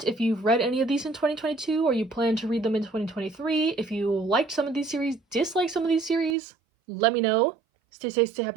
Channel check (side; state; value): left; drops out; at 6.4 s